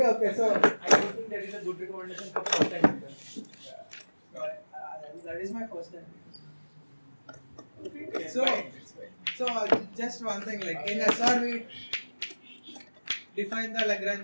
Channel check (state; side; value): inverted; both; correlation -1.00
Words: so I don't think that is a good recommendation for first time. that is my first time. It's So, fine. just one thing, like in SR we define the